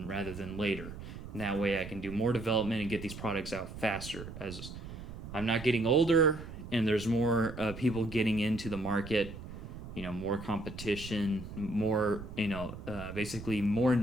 rather than later. And that way I can do more development and get these products out faster, as I'm not getting older and there's more people getting into the market, more competition, more, basically more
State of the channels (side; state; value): right; noise; rumble, 11 dB below the sound